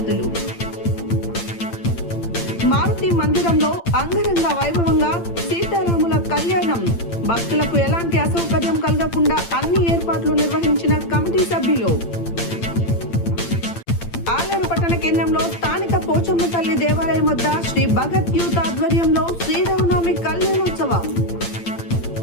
మారుతి మందిరంలో అంగరంగ వైభవంగా సీతారాముల కళ్యాణం. భక్తులకు ఎలాంటి అసౌకర్యం కలగకుండా అన్ని ఏర్పాట్లు నిర్వహించిన కమిటీ సభ్యులు. ఆలేరు పట్టణ కేంద్రంలో స్థానిక పోచమ్మ తల్లి దేవాలయం వద్ద శ్రీ భగత్ యూత్ ఆధ్వర్యంలో శ్రీరామనవమి కళ్యాణోత్సవం.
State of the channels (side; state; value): right; late; 8.8 ms